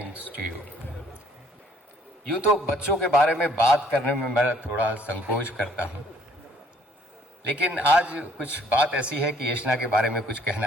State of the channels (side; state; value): both; normal; correlation 0.61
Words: to you. यूँ तो बच्चों के बारे में बात करने में मैं थोड़ा संकोच करता हूँ, लेकिन आज कुछ बात ऐसी है कि एशना के बारे में कुछ